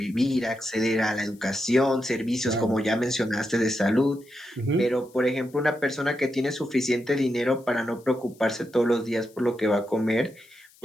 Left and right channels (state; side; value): noise; left; hiss, 28 dB below the sound